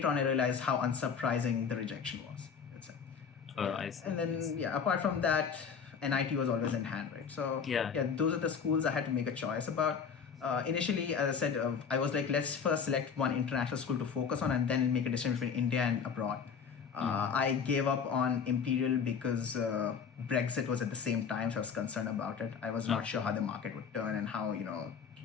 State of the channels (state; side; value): quieter; right; 6.5 dB